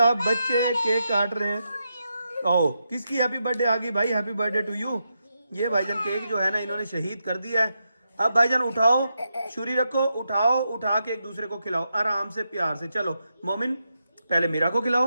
बच्चे केक काट रहे हैं। ओ किसकी हैप्पी बर्थडे आ गई भाई, हैप्पी बर्थडे टू यू। ये भाईजान केक जो है ना इन्होंने शहीद कर दिया है। अब भाईजान उठाओ, छुरी रखो, उठाओ, उठा के एक दूसरे को खिलाओ आराम से प्यार से। चलो मोमिन पहले मीरा को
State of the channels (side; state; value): both; inverted; correlation -0.85